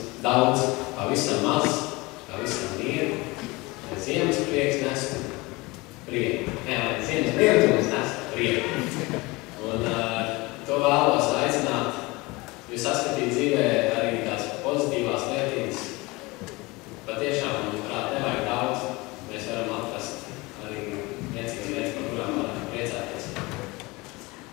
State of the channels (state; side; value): quieter; right; 23.5 dB